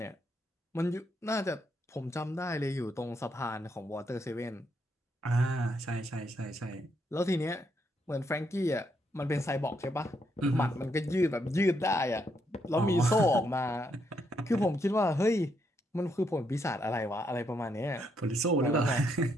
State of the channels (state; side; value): normal; both; correlation 0.76